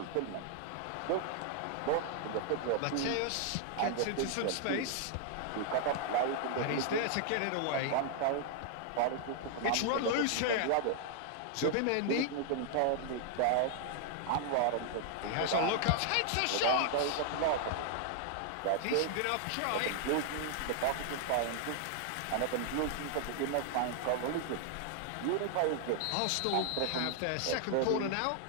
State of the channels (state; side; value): different; both; correlation 0.00